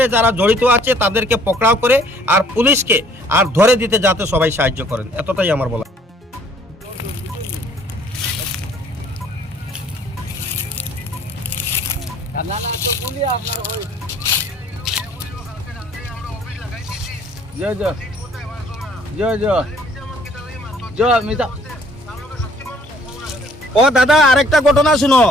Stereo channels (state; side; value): normal; both; correlation 0.59